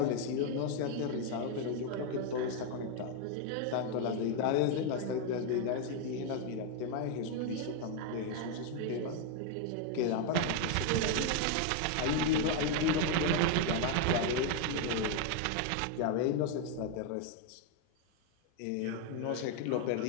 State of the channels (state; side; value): different; both; correlation 0.01